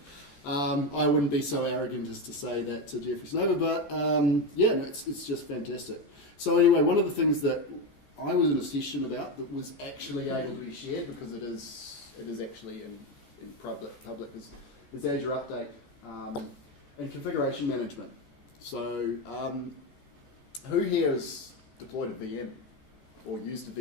I wouldn't be so arrogant as to say that to Jeffrey Snover, but it's just fantastic. So anyway, one of the things that I was in a session about that was actually able to be shared, because it is actually in public is Azure Update and configuration management. So who here has deployed a VM or used a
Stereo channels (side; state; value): right; late; 14 ms